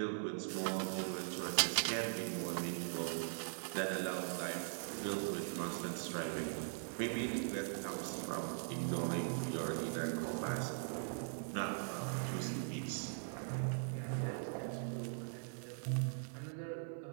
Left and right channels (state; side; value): silent; left; 50 dB below the other